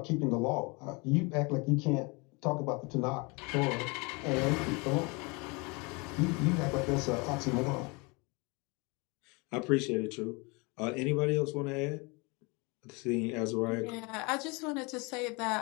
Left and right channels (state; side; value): quieter; right; 28.6 dB